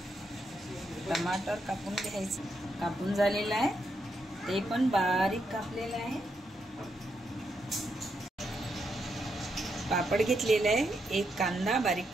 टमाटर कापून घ्यायचं. कापून झालेलं आहे, ते पण बारीक कापलेलं आहे. पापड घेतलेला आहे, एक कांदा बारीक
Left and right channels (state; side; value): normal; both; correlation 0.81